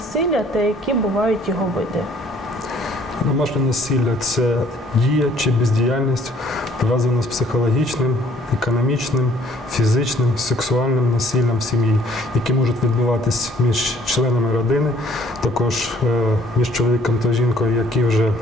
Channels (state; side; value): normal; both; correlation 0.60